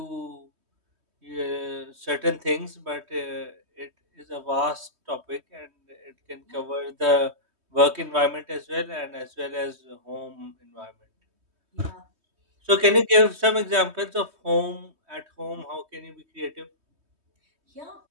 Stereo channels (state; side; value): late; left; 3.2 ms